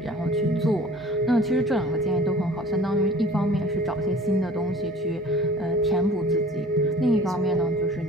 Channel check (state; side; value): noise; right; hum, 28 dB below the sound